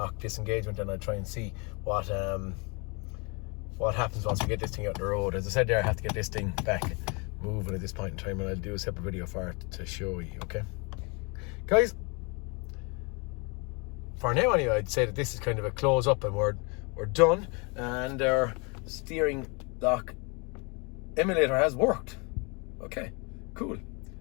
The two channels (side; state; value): right; quieter; 31.1 dB